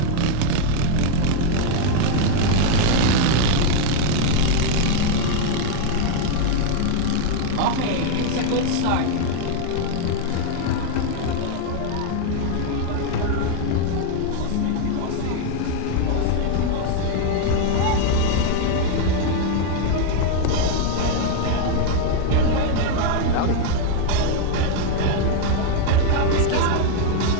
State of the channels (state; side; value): different; both; correlation 0.00